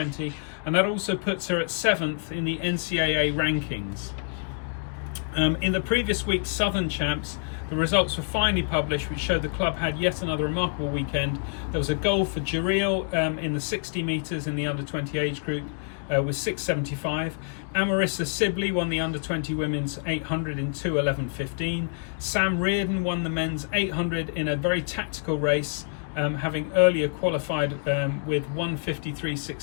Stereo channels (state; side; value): silent; right; 60 dB below the other